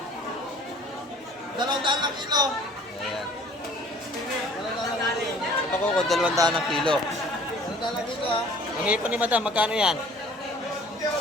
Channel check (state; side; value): normal; both; correlation 0.51